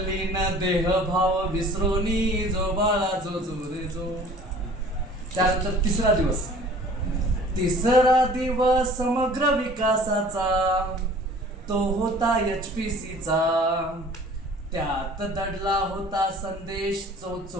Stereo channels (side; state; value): both; normal; correlation 0.48